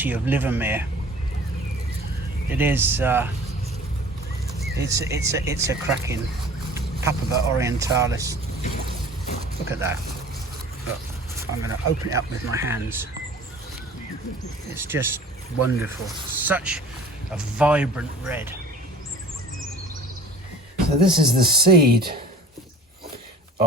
of Livermere. It is. It's a cracking Papava orientalis. Look at that. Look, I'm going to open it up with my hands. It's just wonderful. Such a vibrant red. So this is the seed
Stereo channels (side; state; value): both; normal; correlation 0.45